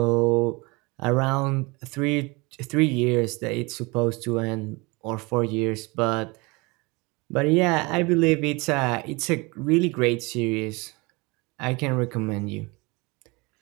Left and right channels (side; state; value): left; quieter; 26.0 dB